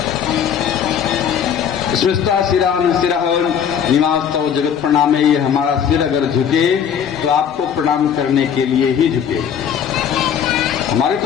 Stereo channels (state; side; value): quieter; right; 8.1 dB